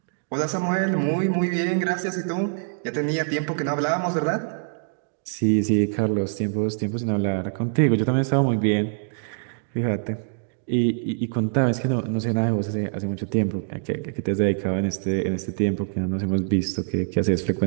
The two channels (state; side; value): silent; left; digital silence